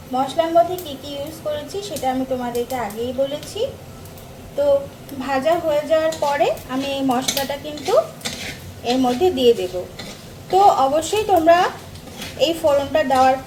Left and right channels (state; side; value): identical; both; correlation 1.00